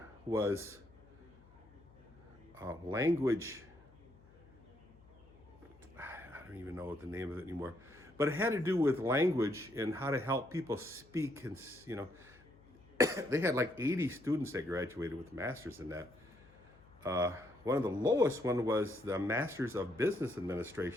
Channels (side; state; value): left; noise; hum, 25 dB below the sound